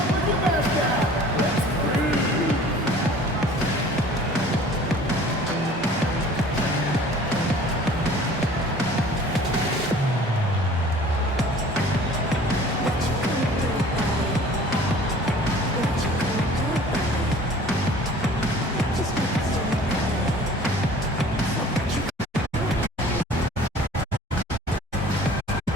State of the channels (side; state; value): both; normal; correlation 0.48